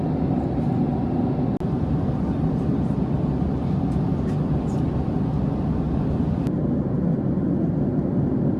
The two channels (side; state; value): both; identical; correlation 1.00